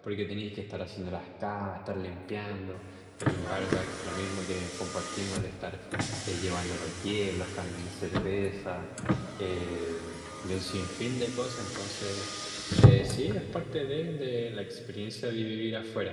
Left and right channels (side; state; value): both; identical; correlation 1.00